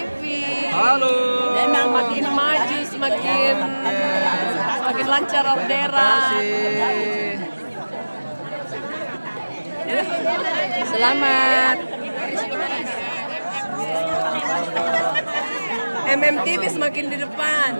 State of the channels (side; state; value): both; inverted; correlation -1.00